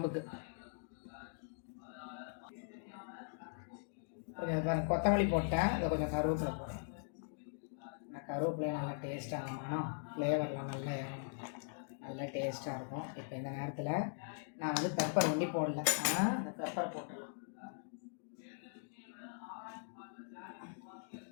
பாருங்க, கொத்தமல்லி போட்டேன். இதை கொஞ்சம் கருவேப்பிலை போட்டேன். கருவேப்பிலையும் நல்லா டேஸ்ட்டாக இருக்கணும், ஃப்ளேவர்லாம் நல்லா இறங்கும், நல்லா டேஸ்ட்டாக இருக்கும். இப்போ இந்த நேரத்தில் நான் வந்து பெப்பர் ஒண்டி போடல, அந்த பெப்பர் போட்டுடலாம்.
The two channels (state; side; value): silent; right; digital silence